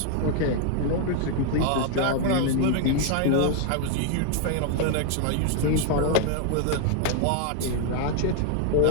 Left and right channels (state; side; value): different; both; correlation 0.00